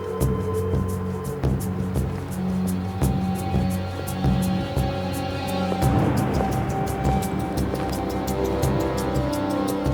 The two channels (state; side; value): identical; both; correlation 1.00